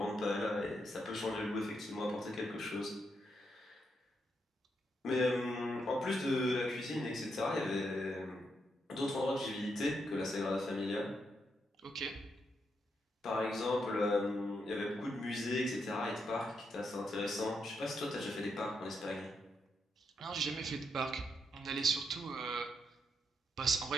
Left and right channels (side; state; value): both; normal; correlation 0.80